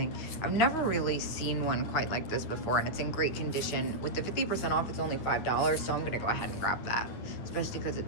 I've never really seen one quite like this before, and it's in great condition. With the 50% off, it's only $5, so I'm gonna go ahead and grab that, especially because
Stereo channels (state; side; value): late; right; 9.4 ms